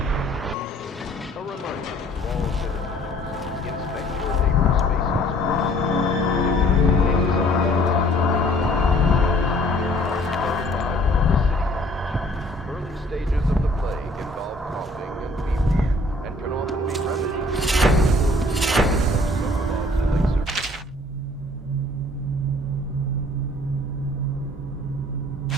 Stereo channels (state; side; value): normal; both; correlation 0.56